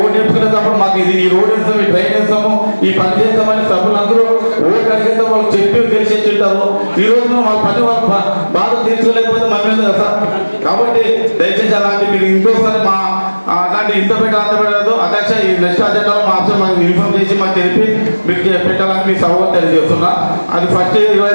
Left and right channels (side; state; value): both; inverted; correlation -1.00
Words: ఓటు వేసుకునేటప్పుడు మాకు ఇది ఈ రోడ్ వేస్తాము, ఈ ట్రైన్ వేస్తాము, ఈ పని చేస్తామని సభ్యులు అందరూ ఓటు అడిగితే వాళ్ళు చెప్పి తెలిసేసి ఉంటారు. ఈ రోజు వాళ్ళ పని వాళ్ళ బాధ తీర్చుకోలేకపోతే మన మీద కదా సార్. కాబట్టి దయచేసి అలాంటి మీరు ఇంకోసారి మా అలాంటి ఇంత పెట్టలేదు అధ్యక్ష. ఈ నెక్స్ట్ అజెండాలో మా అంశం మాకు ఇన్ఫార్మ్ చేసి మాకు తెలిపి మీకు పెట్టాలని మీ సభ తెలియజేస్తున్నా. అది ఫస్ట్